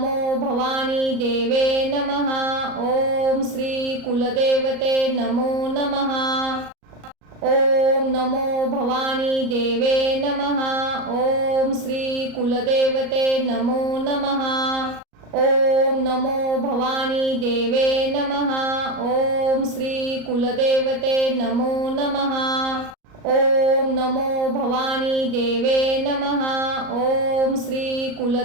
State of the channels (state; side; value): late; left; 38 ms